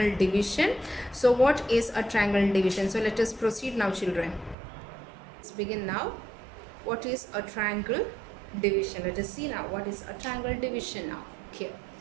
division. So what is a triangle division? So let us proceed now, children. Let's begin now. What is a triangle division? Let us see now what is a triangle division now. Okay.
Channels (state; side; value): drops out; left; at 4.5 s